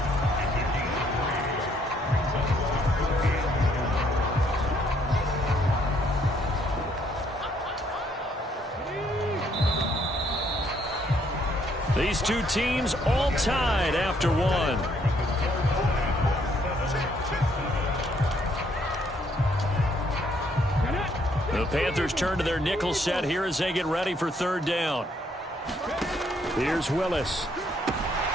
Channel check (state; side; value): normal; both; correlation 0.68